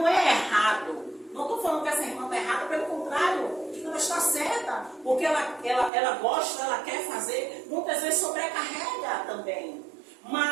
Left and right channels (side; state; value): left; drops out; at 5.9 s